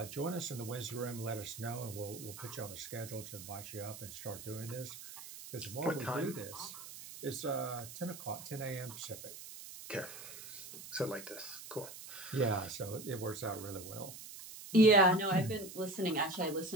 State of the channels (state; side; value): noise; right; hiss, 12 dB below the sound